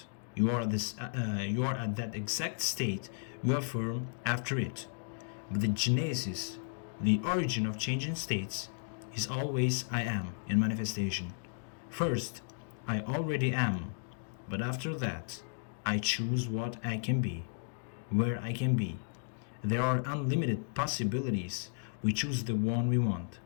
You are at that exact state you affirm after it. But the genesis, the origin of changing states, is always I Am in manifestation. First, I already am. But after that, I choose what I can be, where I can be. There are unlimited possibilities. We choose the one we want.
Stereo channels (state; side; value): silent; right; digital silence